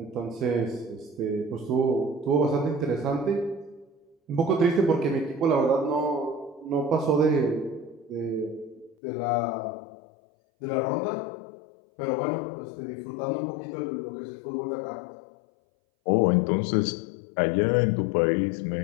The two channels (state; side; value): drops out; right; at 9.0 s